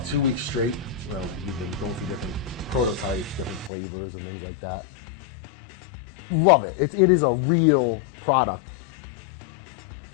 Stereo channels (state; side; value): drops out; right; at 3.7 s